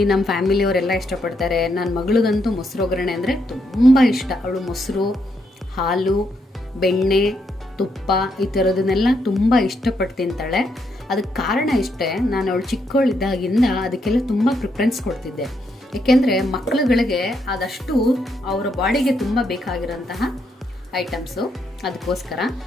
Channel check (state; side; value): normal; both; correlation 0.77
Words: ನಮ್ಮ ಫ್ಯಾಮಿಲಿಯವರೆಲ್ಲ ಇಷ್ಟಪಡ್ತಾರೆ. ನನ್ನ ಮಗಳಿಗಂತೂ ಮೊಸರು ಒಗ್ಗರಣೆ ಅಂದರೆ ತುಂಬ ಇಷ್ಟ. ಅವಳು ಮೊಸರು, ಹಾಲು, ಬೆಣ್ಣೆ, ತುಪ್ಪ ಈ ಥರದನ್ನೆಲ್ಲ ತುಂಬ ಇಷ್ಟಪಟ್ಟು ತಿಂತಾಳೆ. ಅದಕ್ಕೆ ಕಾರಣ ಇಷ್ಟೇ, ನಾನು ಅವಳು ಚಿಕ್ಕವಳಿದ್ದಾಗಿಂದ ಅದಕ್ಕೆಲ್ಲ ತುಂಬ ಪ್ರಿಫರೆನ್ಸ್ ಕೊಡ್ತಿದ್ದೆ. ಏಕೆಂದರೆ ಮಕ್ಕಳುಗಳಿಗೆ ಅದಷ್ಟು ಅವರ ಬಾಡಿಗೆ ತುಂಬ ಬೇಕಾಗಿರೋಂತಹ ಐಟಮ್ಸು. ಅದಕ್ಕೋಸ್ಕರ